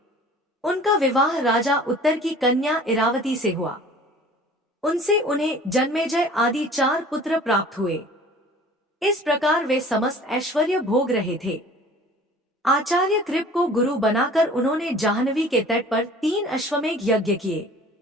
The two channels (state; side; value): normal; both; correlation 0.47